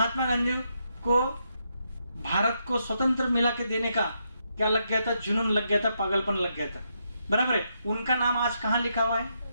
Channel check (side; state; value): both; inverted; correlation -0.80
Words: गांधी को भारत को स्वतंत्र मिला के देने का क्या लग गया था? जुनून लग गया था, पागलपन लग गया था, बराबर है। उनका नाम आज कहां लिखा हुआ है?